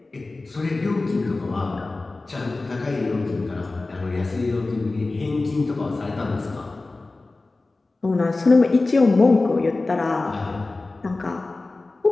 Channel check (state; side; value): quieter; right; 3.3 dB